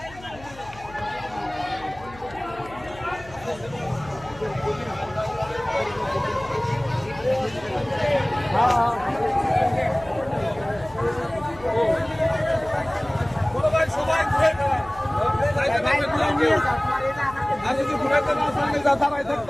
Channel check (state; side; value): noise; left; hum, 20 dB below the sound